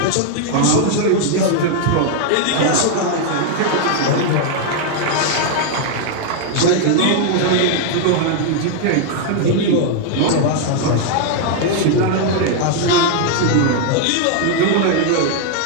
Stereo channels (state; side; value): different; both; correlation 0.00